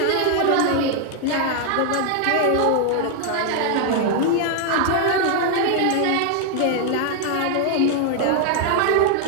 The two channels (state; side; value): different; both; correlation 0.00